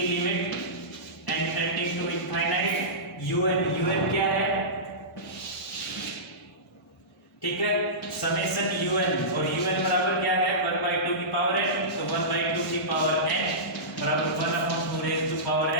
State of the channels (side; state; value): both; normal; correlation -0.19